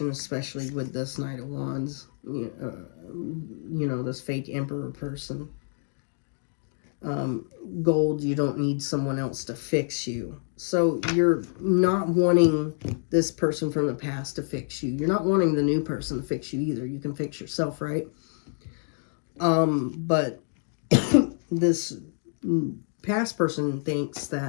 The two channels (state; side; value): silent; right; 60 dB below the other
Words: especially with this Knight of Wands. You know, this fake emperor person. Gold, you don't need someone else to fix you. So you're not wanting this person from the past to fix you. You're not wanting the new person to fix you either. You can fix yourself, right? But this past person thinks